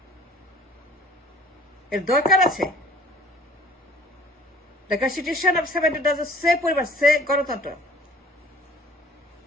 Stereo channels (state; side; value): normal; both; correlation 0.52